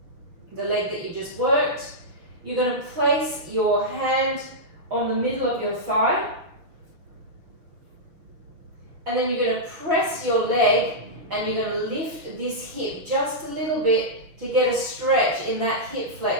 The leg that you just worked. You're going to place your hand on the middle of your thigh. And then you're going to press your leg and you're going to lift this hip just a little bit to get a stretch in that hip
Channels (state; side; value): late; left; 6.2 ms